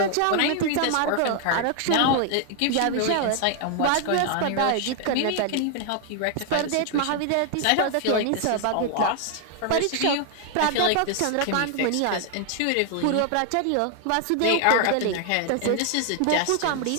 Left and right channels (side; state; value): both; different; correlation 0.00